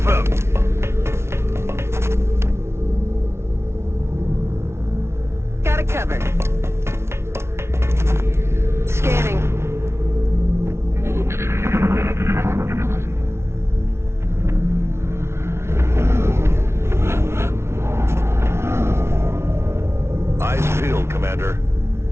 Got it covered. Scanning. Eyes peeled, Commander.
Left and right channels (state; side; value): late; left; 0.13 ms